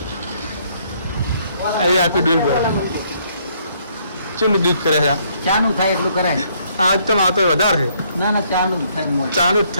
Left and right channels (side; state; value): both; inverted; correlation -0.68